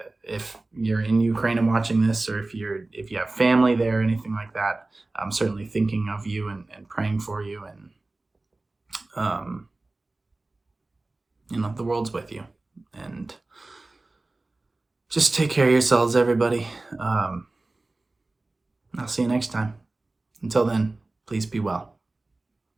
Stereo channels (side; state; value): left; quieter; 3.1 dB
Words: if you're in Ukraine and watching this, or if you have family there or anything like that, I'm certainly thinking of you and praying for you, and the world's with you. And just take care of yourselves, everybody. I'll see you next time. Until then, please be well.